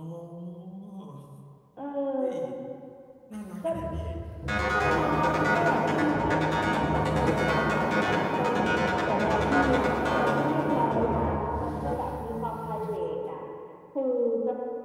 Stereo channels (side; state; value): both; identical; correlation 1.00